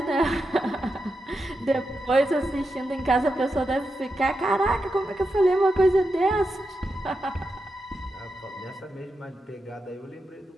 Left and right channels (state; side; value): normal; both; correlation 0.88